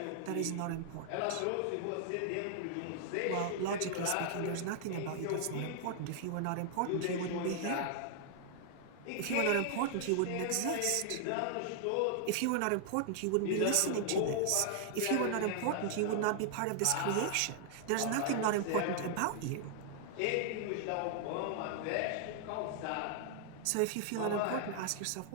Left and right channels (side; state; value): both; different; correlation 0.00